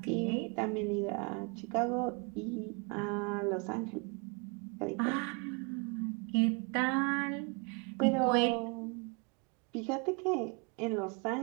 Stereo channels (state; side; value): quieter; left; 33.3 dB